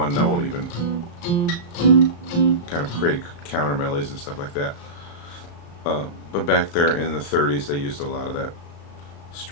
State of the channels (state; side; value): late; right; 35 ms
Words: note, even kind of created counter melodies and stuff like that. But back there in the 30s, they used a lot of that